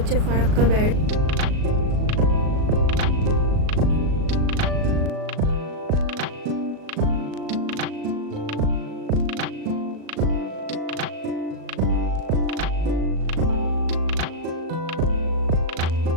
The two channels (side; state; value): left; late; 37 ms